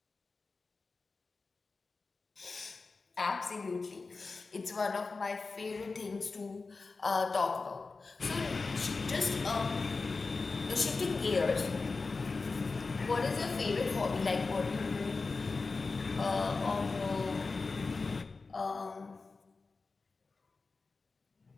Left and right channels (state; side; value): quieter; right; 4.1 dB